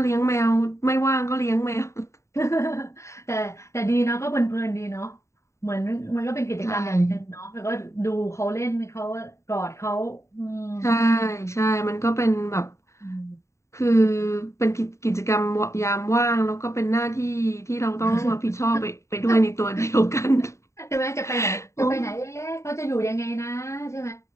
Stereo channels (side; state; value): right; late; 0.14 ms